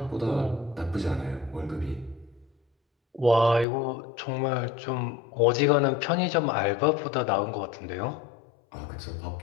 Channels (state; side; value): drops out; right; at 3.7 s